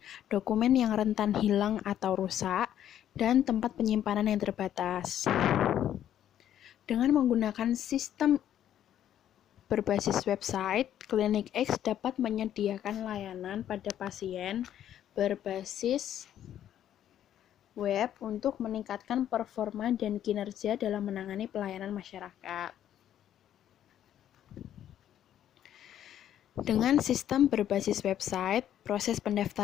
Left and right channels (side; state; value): right; quieter; 10.9 dB